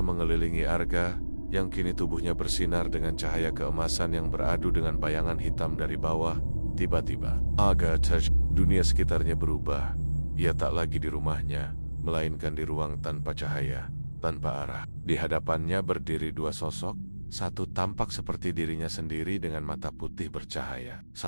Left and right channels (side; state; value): both; inverted; correlation -1.00